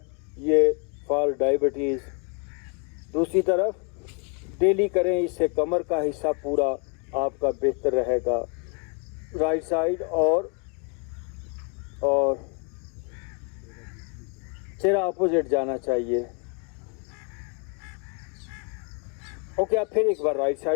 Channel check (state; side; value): quieter; right; 37.4 dB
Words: ये फॉर डायबिटीज़। दूसरी तरफ डेली करें, इससे कमर का हिस्सा पूरा आपका बेहतर रहेगा। राइट साइड और चेहरा अपोजिट जाना चाहिए। ओके, आप फिर एक बार राइट